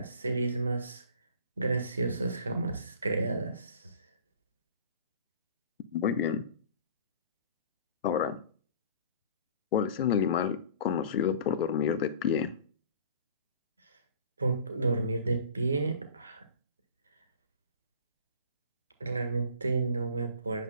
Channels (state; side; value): inverted; both; correlation -0.44